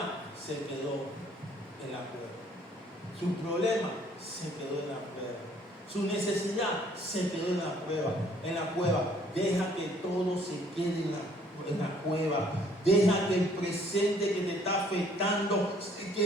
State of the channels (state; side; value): normal; both; correlation 0.61